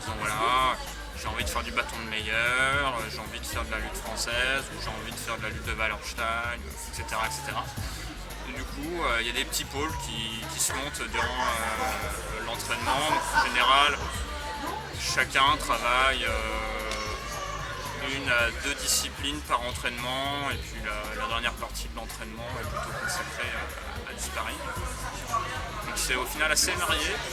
voilà, j'ai envie de faire du bâton de meilleur, j'ai envie de faire de la lutte française, ou j'ai envie de faire de la lutte de Wallerstein, etc. etc. Et du coup, il y a des petits pôles qui se montent durant l'entraînement. En général, chacun travaille une à deux disciplines par entraînement et puis la dernière partie de l'entraînement est plutôt consacrée à du sparring. Donc c'est au final assez varié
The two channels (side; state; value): both; identical; correlation 1.00